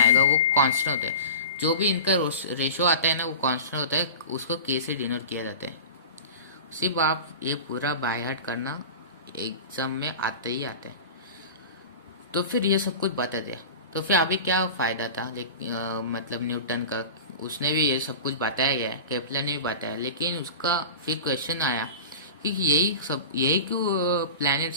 वो कांस्टेंट होता है। जो भी इनका रेशियो आता है ना वो कांस्टेंट होता है, उसको के से डिनोट किया जाता है। सिर्फ आप ये पूरा बाय हार्ट करना, एग्जाम में आते ही आते हैं। तो फिर ये सब कुछ बता दिया, तो फिर अभी क्या फ़ायदा था मतलब न्यूटन का, उसने भी ये सब कुछ बताया गया, केपलर ने भी बताया, लेकिन उसका फिर क्वेश्चन आया कि यही क्यों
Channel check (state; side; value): inverted; both; correlation -0.32